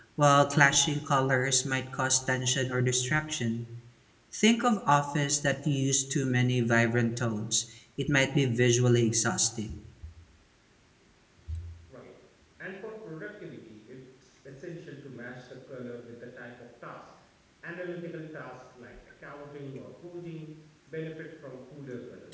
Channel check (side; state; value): both; identical; correlation 1.00